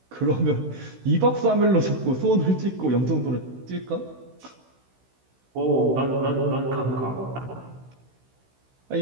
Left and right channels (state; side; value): late; left; 16 ms